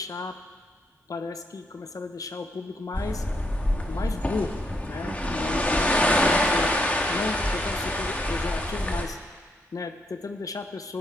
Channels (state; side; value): normal; both; correlation 0.76